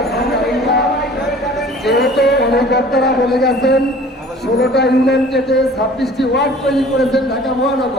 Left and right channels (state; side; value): normal; both; correlation 0.48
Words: যেহেতু অনেক বক্তারা বলে গেছেন 16টা ইউনিয়ন কেটে 26টি ওয়ার্ড তৈরি করেছেন ঢাকা